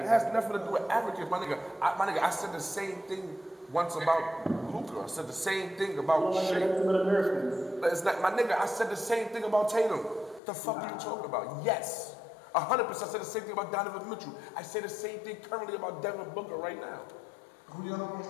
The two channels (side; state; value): right; drops out; at 10.4 s